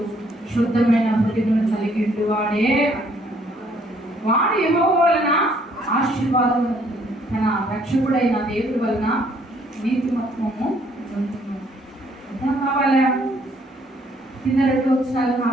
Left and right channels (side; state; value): both; normal; correlation 0.65